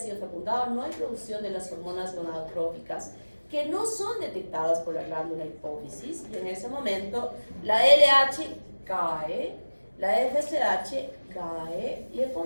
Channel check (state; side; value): inverted; both; correlation -1.00